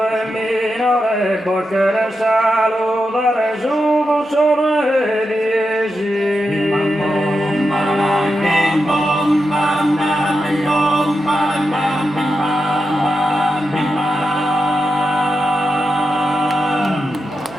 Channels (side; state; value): both; normal; correlation 0.88